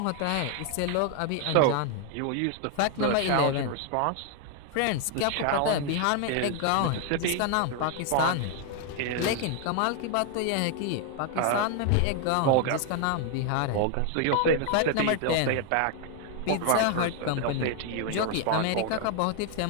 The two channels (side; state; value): both; different; correlation 0.00